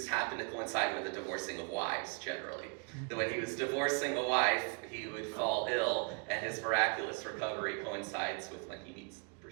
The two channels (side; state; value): left; quieter; 38.8 dB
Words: happened to coincide with the divorcing of wives, generally. That when he was divorcing a wife, he would fall ill, and his miraculous recovery coincides with when he meets the